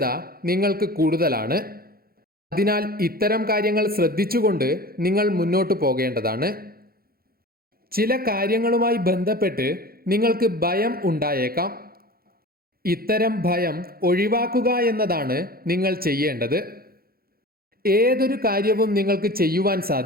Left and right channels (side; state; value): left; late; 0.44 ms